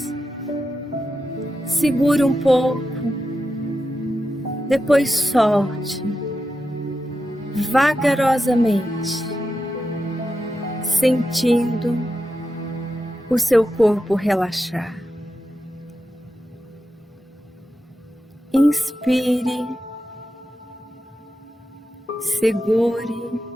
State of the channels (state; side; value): normal; both; correlation 0.89